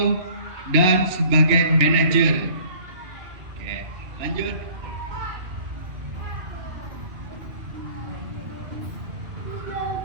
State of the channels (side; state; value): left; late; 2.4 ms